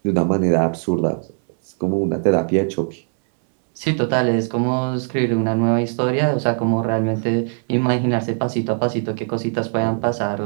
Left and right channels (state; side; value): silent; left; 66 dB below the other